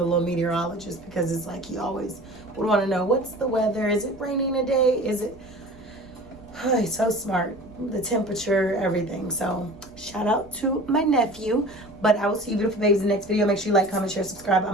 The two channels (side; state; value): both; normal; correlation 0.40